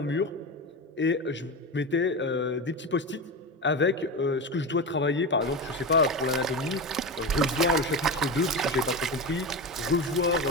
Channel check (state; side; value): normal; both; correlation 0.21